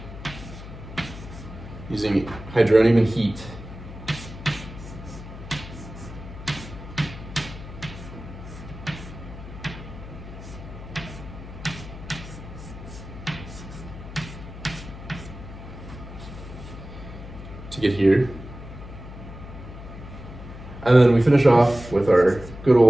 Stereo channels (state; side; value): noise; left; hum, 13 dB below the sound